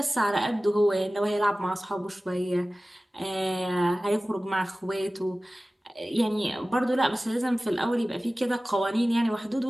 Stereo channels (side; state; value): both; normal; correlation 0.97